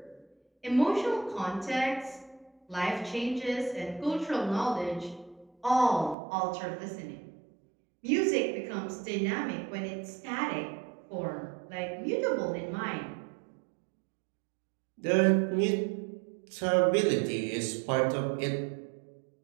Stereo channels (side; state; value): left; drops out; at 6.2 s